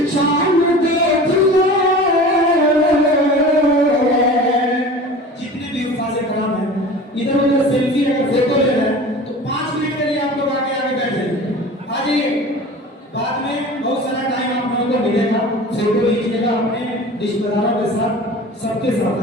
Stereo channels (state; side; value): normal; both; correlation 0.38